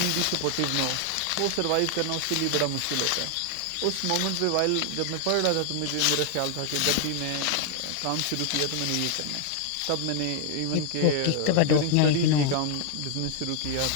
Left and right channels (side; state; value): both; different; correlation 0.00